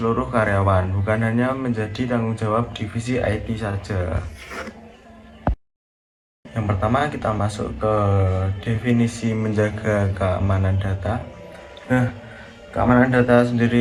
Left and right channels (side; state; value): both; identical; correlation 1.00